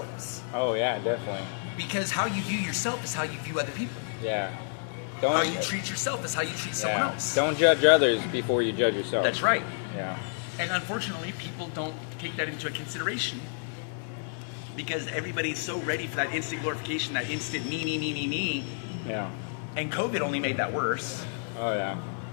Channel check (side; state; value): right; silent; 57 dB below the other